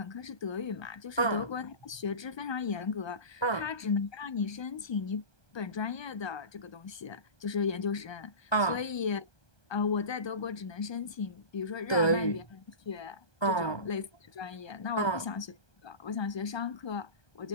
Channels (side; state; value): right; late; 1.2 ms